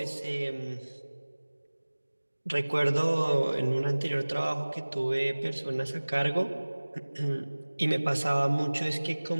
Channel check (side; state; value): both; inverted; correlation -1.00